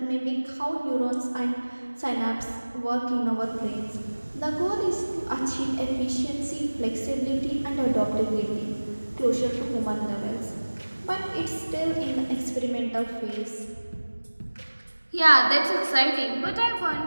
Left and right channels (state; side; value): inverted; both; correlation -1.00